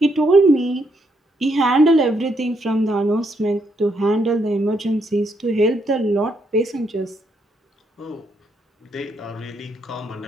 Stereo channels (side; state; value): both; normal; correlation 0.76